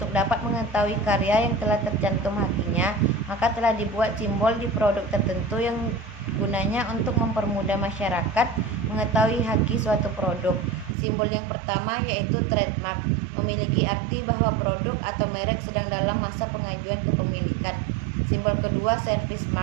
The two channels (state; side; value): drops out; left; at 11.0 s